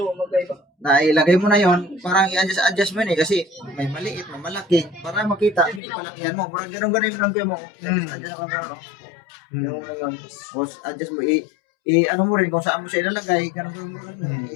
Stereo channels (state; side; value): drops out; right; at 5.8 s